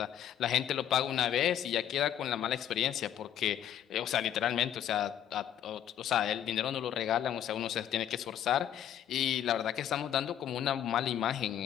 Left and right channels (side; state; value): right; quieter; 10.3 dB